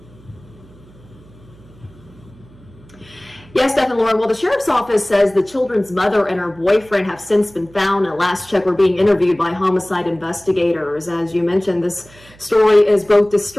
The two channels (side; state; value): right; noise; hum, 25 dB below the sound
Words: Yes, Steph and Lauren. Well, the sheriff's office says the children's mother and her boyfriend have since been found. At last check, were being interviewed by homicide investigators. As you mentioned, this story is both